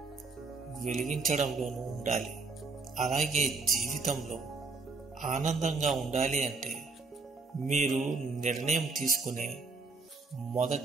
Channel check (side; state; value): left; quieter; 4.0 dB